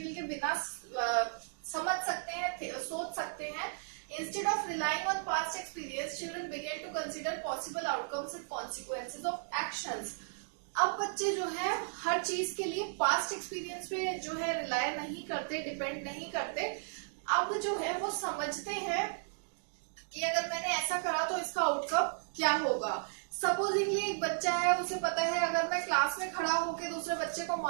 के बिना समझ सकते हैं, सोच सकते हैं। Instead of relying on past experience, children began to consider possible outcomes and consequences of actions. अब बच्चे जो है हर चीज के लिए पास्ट एक्सपीरियंस पे जो है रिलाय नहीं करते, डिपेंड नहीं करते। अब जो है वो समझते हैं कि अगर मैंने ऐसा करा तो इसका आउटकम क्या होगा। सपोजिंगली एक बच्चा है, उसे पता है अगर मैं क्लास में खड़ा होकर दूसरे बच्चे को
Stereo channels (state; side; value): silent; left; digital silence